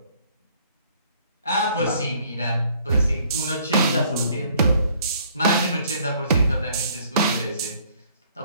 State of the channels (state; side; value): inverted; both; correlation -0.61